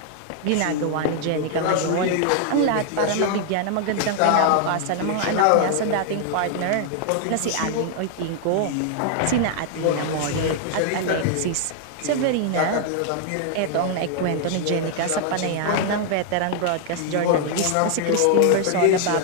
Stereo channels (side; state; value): both; different; correlation 0.00